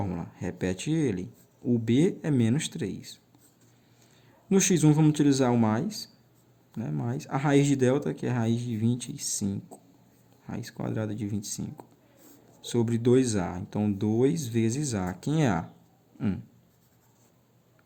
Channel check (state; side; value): identical; both; correlation 1.00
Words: Repete ele. O b é menos 3. No x1, vamos utilizar o mais, né? Mais a raiz de delta, que é a raiz de 25. Raiz quadrada de 25. Sobre 2a. Então, 2 vezes a. Quem é a? 1.